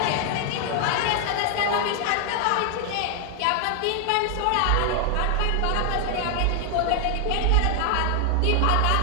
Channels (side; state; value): both; different; correlation 0.00